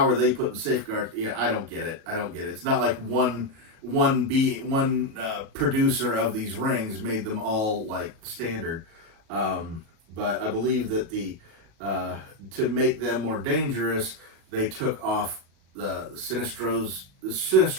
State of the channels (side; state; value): left; late; 37 ms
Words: are they putting safeguards? Yeah, I don't get it. It's not like one producer of these rings made them all like standard, but I believe that to make them more dangerous, they took off the